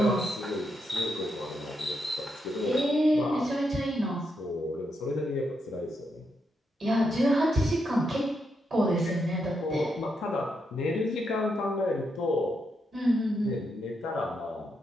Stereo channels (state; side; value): normal; both; correlation 0.81